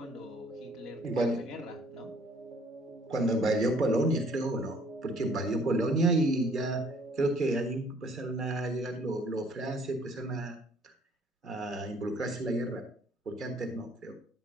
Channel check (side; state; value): both; normal; correlation 0.60